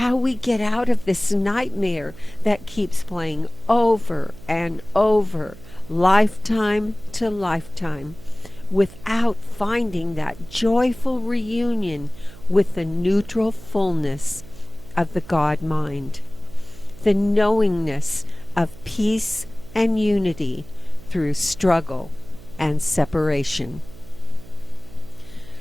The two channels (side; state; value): right; noise; hum, 19 dB below the sound